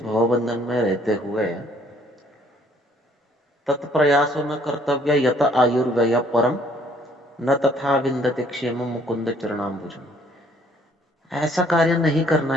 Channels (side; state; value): both; normal; correlation 0.62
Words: भवबंधन में रहते हुए तत्प्रयासो न कर्तव्य यत आयुर्व्यय परम न तथा विंदते क्षेम मुकुंद चरणाम्बुजम। ऐसा कार्य नहीं करना